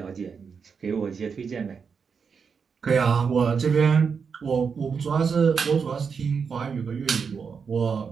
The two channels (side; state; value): left; quieter; 5.9 dB